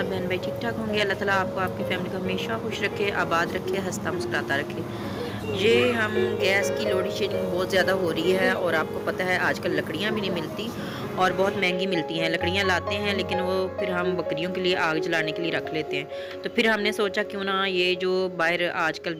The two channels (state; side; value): identical; both; correlation 1.00